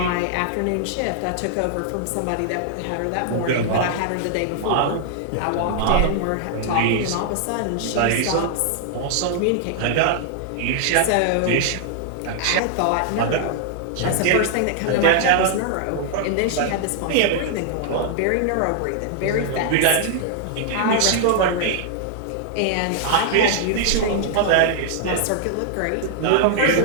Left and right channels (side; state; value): both; different; correlation -0.01